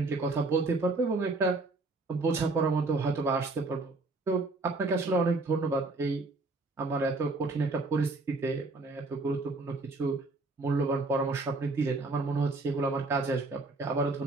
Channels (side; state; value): left; quieter; 3.3 dB